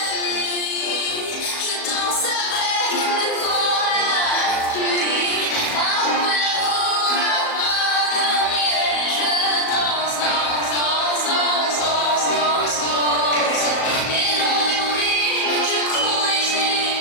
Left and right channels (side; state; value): right; late; 37 ms